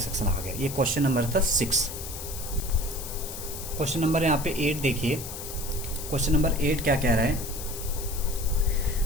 आ गया। ये क्वेश्चन नंबर था 6। क्वेश्चन नंबर यहाँ पे 8 देखिए। क्वेश्चन नंबर 8 क्या कह रहा है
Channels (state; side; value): noise; left; hiss, 9 dB below the sound